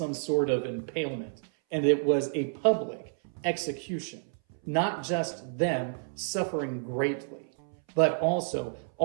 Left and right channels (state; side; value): silent; left; 58 dB below the other